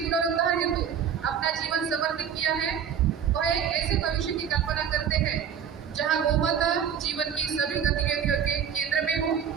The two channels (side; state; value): left; quieter; 8.1 dB